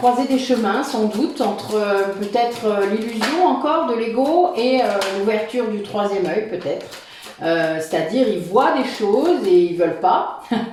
des chemins, sans doute, entre peut-être l'illusion encore de l'ego et l'ouverture du troisième œil, peut-être. C'est-à-dire, ils voient des choses et ils veulent pas.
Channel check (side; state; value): both; identical; correlation 1.00